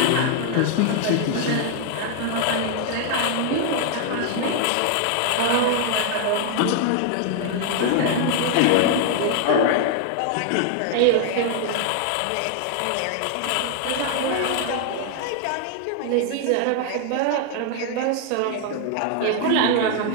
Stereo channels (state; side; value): different; both; correlation 0.00